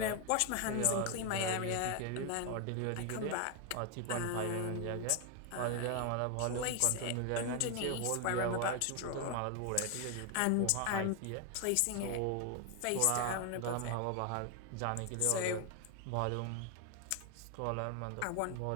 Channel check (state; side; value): different; both; correlation 0.01